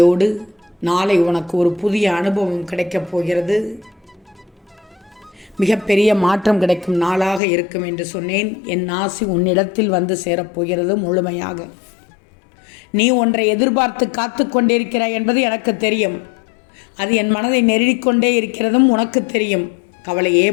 நாளை உனக்கு ஒரு புதிய அனுபவம் கிடைக்கப் போகிறது. மிகப்பெரிய மாற்றம் கிடைக்கும் நாளாக இருக்கும் என்று சொன்னேன். என் ஆசி உன்னிடத்தில் வந்து சேரப்போகிறது முழுமையாக. நீ ஒன்றை எதிர்பார்த்து காத்து கொண்டிருக்கிறாய் என்பது எனக்கு தெரியும். அது என் மனதை நெருடிக்கொண்டே இருக்கிறதும் உனக்கு தெரியும். கவலையே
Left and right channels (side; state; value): right; drops out; at 7.4 s